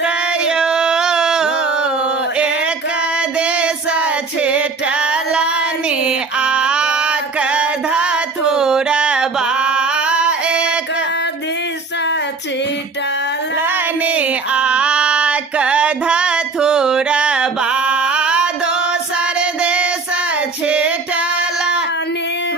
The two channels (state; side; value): quieter; left; 4.3 dB